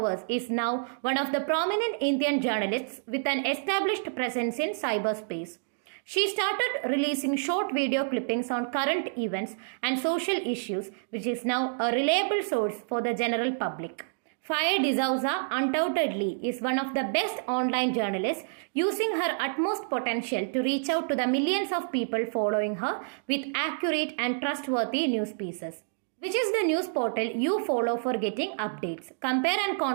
is now one of the prominent Indian journalists with an established presence in cyberspace. She started releasing short video clippings on current events and social issues, which is now a reliable source for the general public. Faye D'Souza undoubtedly is one of the best online journalists, using her utmost potential to reach out to the millions of people following her with accurate and trustworthy news pieces. Which is the news portal you follow for getting updates? Compare and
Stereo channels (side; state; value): left; silent; digital silence